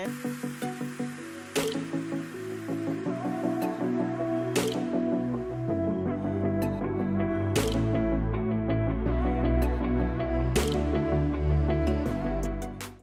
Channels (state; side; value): identical; both; correlation 1.00